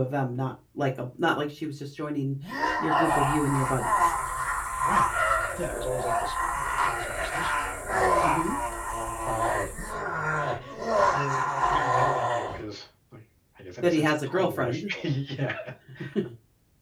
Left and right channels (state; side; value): identical; both; correlation 1.00